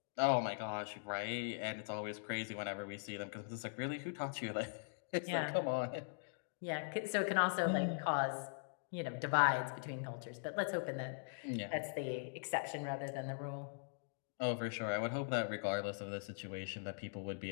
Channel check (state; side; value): silent; right; digital silence